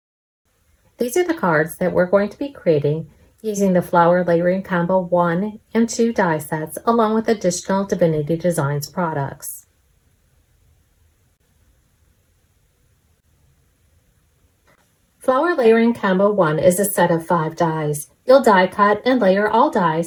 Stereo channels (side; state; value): both; identical; correlation 1.00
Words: These are the cards that we're going to be creating using the Flower Layering Combo 1 and 2 die sets along with additional Divinity Designs products. Flower Layering Combo 1 is a set of 5 dies. You'll die cut and layer all